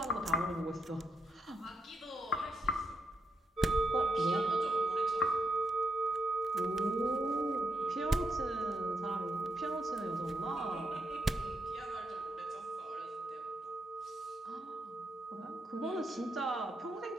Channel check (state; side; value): normal; both; correlation 0.81